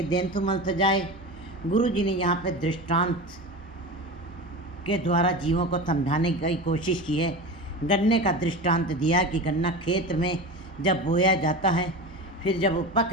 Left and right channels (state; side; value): normal; both; correlation 0.28